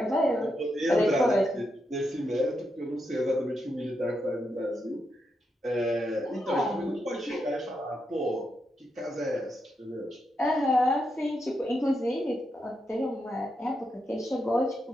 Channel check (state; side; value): normal; both; correlation 0.83